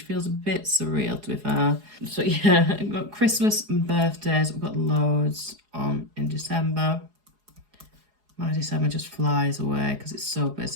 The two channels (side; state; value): left; late; 4.8 ms